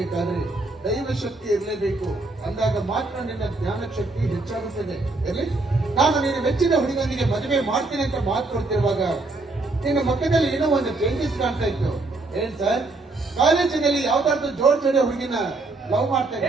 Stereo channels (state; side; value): quieter; left; 3.2 dB